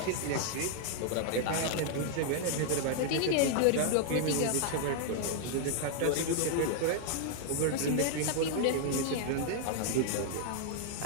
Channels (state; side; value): different; both; correlation 0.00